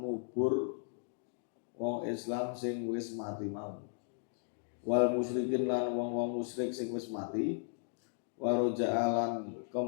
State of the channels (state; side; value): silent; right; digital silence